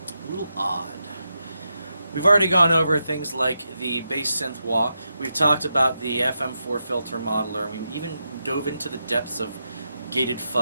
a little odd. We've already gone over things like the bass synth wah. We've talked about the FM4 filter modeler. We even dove into the depths of gated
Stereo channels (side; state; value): both; inverted; correlation -0.86